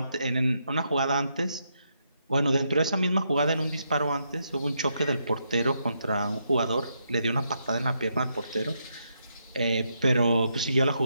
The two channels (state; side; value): inverted; both; correlation -0.79